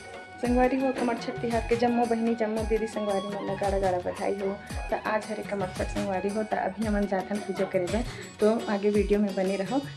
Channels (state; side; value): identical; both; correlation 1.00